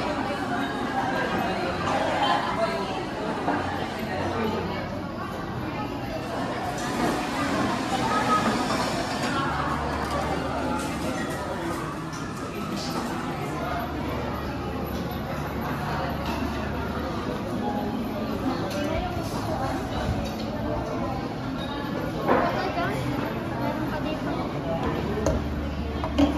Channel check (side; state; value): both; identical; correlation 1.00